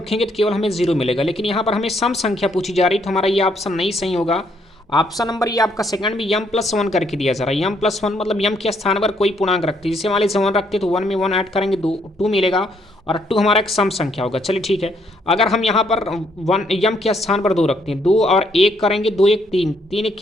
तो केवल हमें जीरो मिलेगा। लेकिन यहाँ पर हमें सम संख्या पूछी जा रही तो हमारा ये ऑप्शन नहीं सही होगा। ऑप्शन नंबर ये आपका सेकंड में m+1 करके दिया जा रहा है। m+1 मतलब यम के स्थान पर कोई पूर्णांक रखते हैं, जैसे मान लीजिए 1 रखते तो 1 में 1 ऐड करेंगे 2 मिलेगा, और 2 हमारा एक सम संख्या होगा। चलिए ठीक है। अगर हम यहाँ पर 1 यम के स्थान पर 2 रखते हैं, 2 और 1 करेंगे, 2 1 3, 3 एक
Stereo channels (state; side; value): normal; both; correlation 0.71